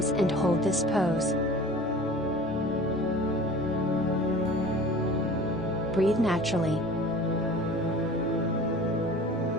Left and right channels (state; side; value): normal; both; correlation 0.42